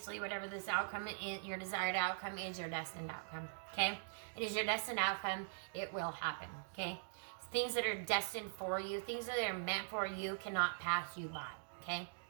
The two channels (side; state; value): left; silent; digital silence